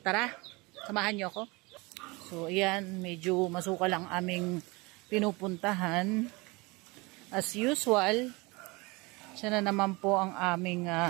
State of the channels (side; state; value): left; quieter; 25.2 dB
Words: tara, samahan niyo ako. So ayan, medyo masukal ang aming pinupuntahan. As usual, siya na naman po ang aming